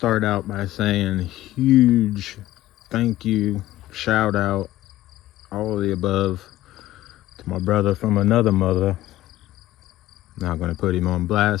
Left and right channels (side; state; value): right; quieter; 15.2 dB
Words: out by saying huge thank you, shout out, all of the above to my brother from another mother. Not gonna put him on